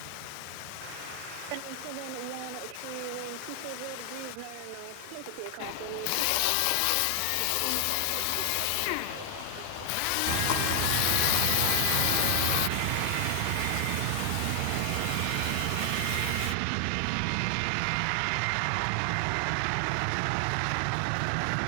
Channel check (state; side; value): different; both; correlation 0.00